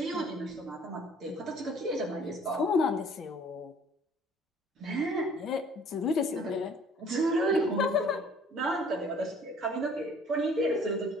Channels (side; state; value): both; normal; correlation 0.54